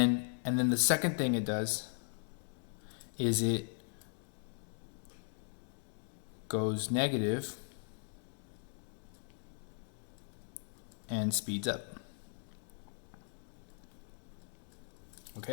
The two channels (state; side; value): silent; right; 52 dB below the other